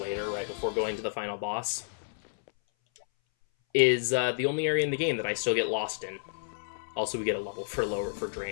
right before going to the final boss, is the only area in the game that I still get lost in. Also, we get a level for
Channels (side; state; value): right; silent; 58 dB below the other